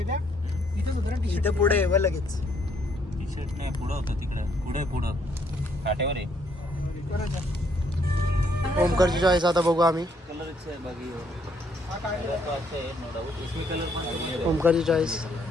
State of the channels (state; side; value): normal; both; correlation 0.69